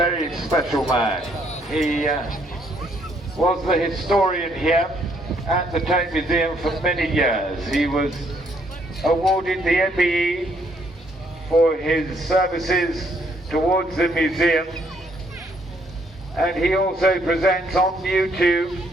special man. He was the historian here at the Tank Museum for many years. He was awarded the MBE for his services towards the museum, and he also presents on YouTube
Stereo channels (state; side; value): normal; both; correlation 0.69